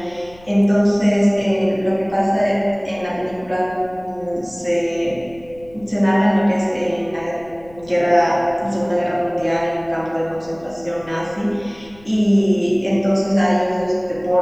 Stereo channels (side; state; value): left; noise; rumble, 24 dB below the sound